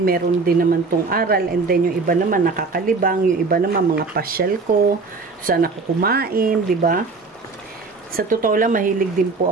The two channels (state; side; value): quieter; left; 4.1 dB